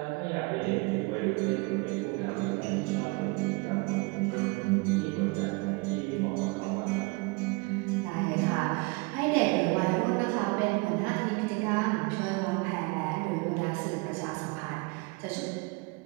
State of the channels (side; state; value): left; quieter; 27.5 dB